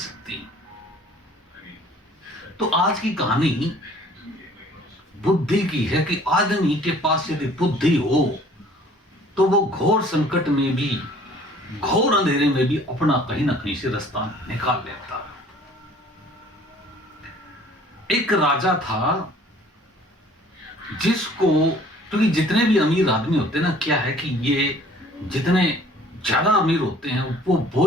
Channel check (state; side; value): normal; both; correlation 0.53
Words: हैं। तो आज की कहानी बुद्धि की है कि आदमी के पास यदि बुद्धि हो तो वो घोर संकट में भी, घोर अंधेरे में भी अपना कहीं ना कहीं से रास्ता निकाल लेता। एक राजा था जिसको, क्योंकि जितने भी अमीर आदमी होते हैं ना, क्या है कि ये जितने ज्यादा अमीर होते हैं वो